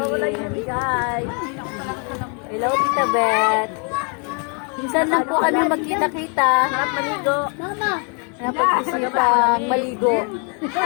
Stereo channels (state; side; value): quieter; right; 38.2 dB